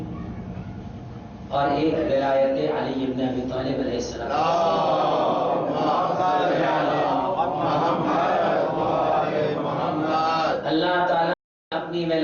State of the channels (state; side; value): identical; both; correlation 1.00